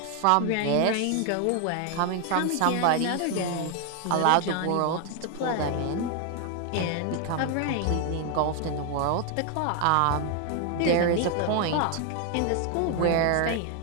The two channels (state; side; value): different; both; correlation 0.00